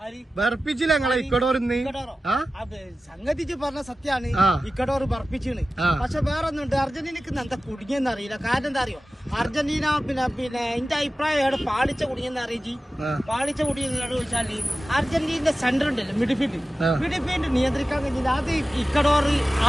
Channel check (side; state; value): both; normal; correlation 0.95